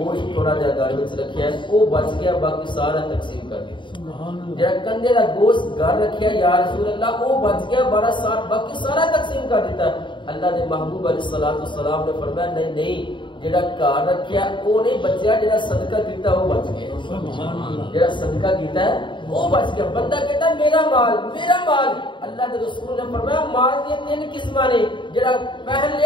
تھوڑا جہا گھر وچ رکھیا ہے وہ بچ گیا باقی سارا تقسیم کر دیا جڑا کندے دا گوشت گھر رکھیا یا رسول اللہ وہ بچ گیا باقی سارا تقسیم کر دیتا ہے اللہ دے محبوب علیہ الصلوۃ والسلام نے فرمایا نہیں نہیں جڑا گھر رکھیا وہ نہیں بچیا جڑا صدقہ کیتا وہ بچ گیا جڑا صدقہ کیتا ہے وہ بچ گیا بندہ کہتا ہے میرا مال اللہ کے رسول نے فرمایا مال کی تین قسماں نے جڑا پہن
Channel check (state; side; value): late; right; 0.23 ms